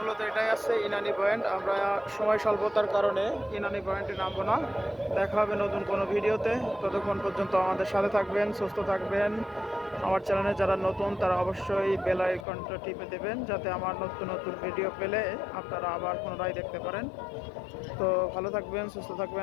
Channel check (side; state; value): right; drops out; at 12.5 s